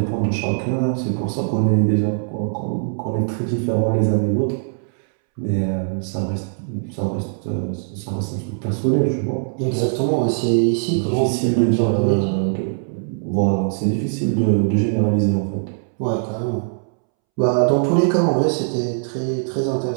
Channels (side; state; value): left; silent; 65 dB below the other